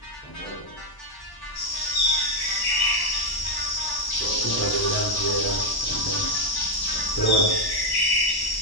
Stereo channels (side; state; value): right; late; 1.0 ms